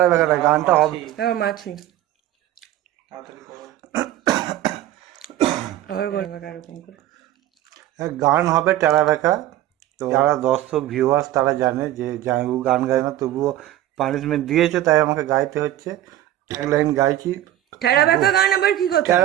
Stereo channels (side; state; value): left; quieter; 13.3 dB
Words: বেঁকা না, গানটা হবে। মাছি। আবার বলো এরকম করে। গান হবে টেরা বেঁকা। তো যারা দর্শক ভিউয়ার্স তারা জানে যে ও গান গায় না, তবুও পানিশমেন্ট দিয়েছে, তাই আমাকে গাইতে হচ্ছে। এক লাইন গাইছি। ঠেরা ব্যাকা গান আবার কি কথা?